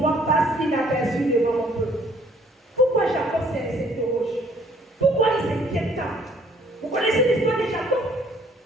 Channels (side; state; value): both; normal; correlation 0.60